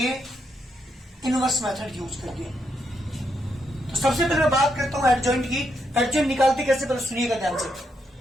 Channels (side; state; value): both; normal; correlation 0.79